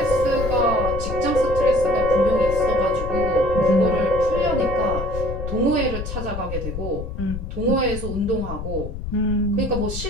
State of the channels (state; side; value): noise; left; rumble, 6 dB below the sound